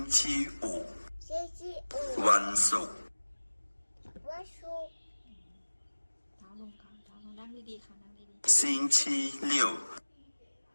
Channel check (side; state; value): both; inverted; correlation -1.00